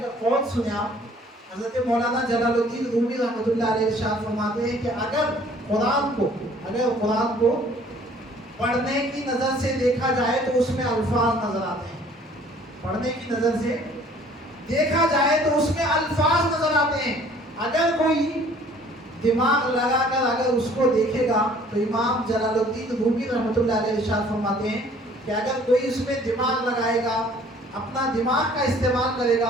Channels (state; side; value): normal; both; correlation 0.55